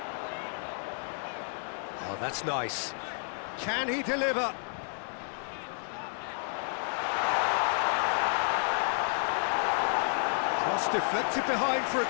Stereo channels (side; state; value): right; silent; 57 dB below the other